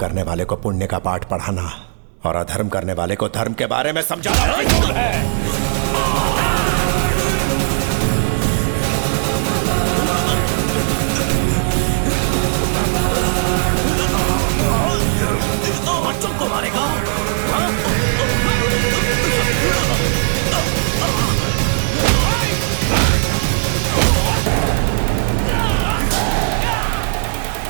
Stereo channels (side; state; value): left; silent; digital silence